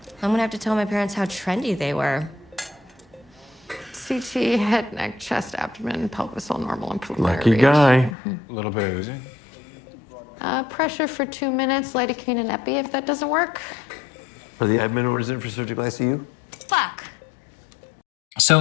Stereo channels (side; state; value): right; drops out; at 8.2 s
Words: I'm gonna have to tell my parents how trendy they were. CT, head, neck, chest, abdomen, pelvis, all normal and preliminary Lucky read. guy. A little bit of oozing. Pressure for 2 minutes, lidocaine and epi if that doesn't work. Are the admin orders in for surgical ICU? Fuck.